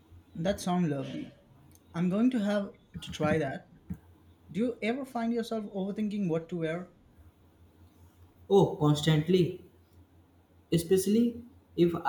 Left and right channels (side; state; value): both; identical; correlation 1.00